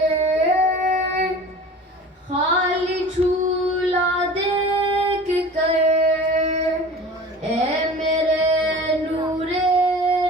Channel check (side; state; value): both; normal; correlation 0.40